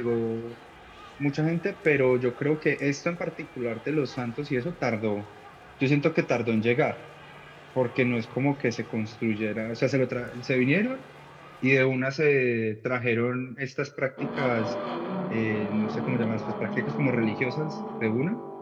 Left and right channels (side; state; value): both; identical; correlation 1.00